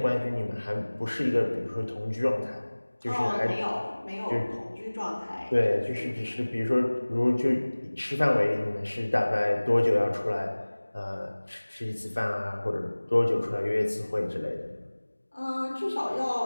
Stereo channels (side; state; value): both; inverted; correlation -1.00